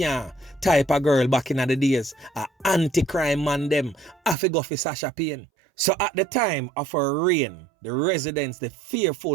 type of girl back in the days. A anti-crime man them, I go for Sasha Payne. So at the time of her reign, the residents, the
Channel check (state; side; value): drops out; left; at 4.4 s